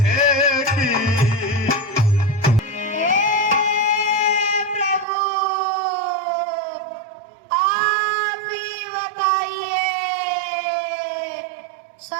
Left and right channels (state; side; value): drops out; left; at 5.1 s